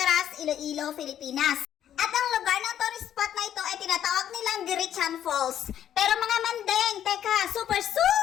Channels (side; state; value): right; quieter; 10.4 dB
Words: Iloilo, Pilipinas. At ang lugar ng tourist spot na ito ay tinatawag nilang Dirichan Falls. Pero mga mandeng, teka, super